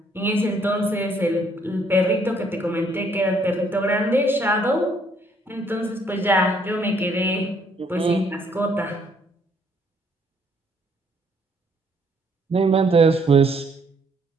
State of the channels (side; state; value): both; normal; correlation 0.66